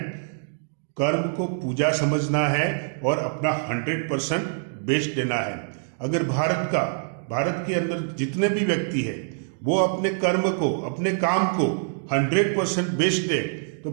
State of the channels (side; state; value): left; silent; digital silence